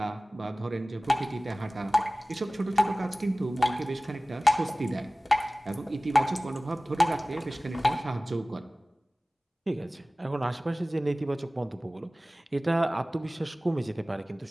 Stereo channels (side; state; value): both; normal; correlation 0.98